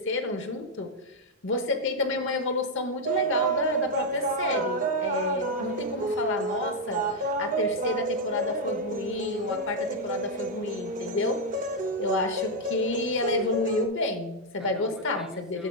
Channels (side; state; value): both; normal; correlation 0.00